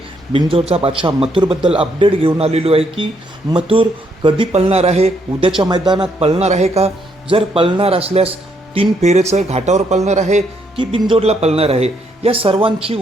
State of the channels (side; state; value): both; normal; correlation 0.73